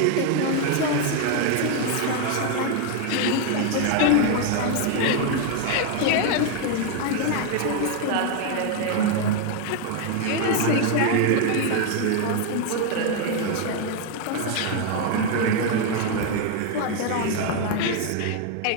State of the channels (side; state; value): both; different; correlation 0.01